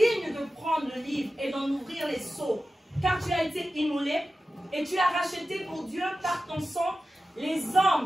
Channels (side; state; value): both; normal; correlation 0.94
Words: de prendre le livre et d'en ouvrir les sceaux, car tu as été immolé et tu as racheté pour Dieu par ton sang les